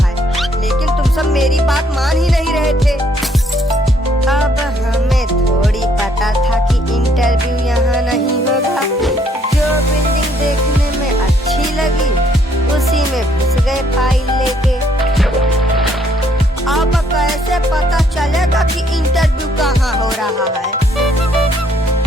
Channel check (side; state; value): both; normal; correlation 0.68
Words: है, लेकिन तुम सब मेरी बात मान ही नहीं रहे थे। अब हमें थोड़ी पता था कि इंटरव्यू यहाँ नहीं होगा। जो बिल्डिंग देखने में अच्छी लगी उसी में घुस गए फाइल लेके। अब कैसे पता चलेगा कि इंटरव्यू कहाँ हो रहा है?